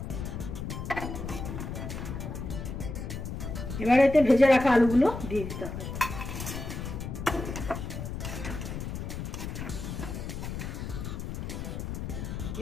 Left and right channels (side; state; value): left; noise; rumble, 6 dB below the sound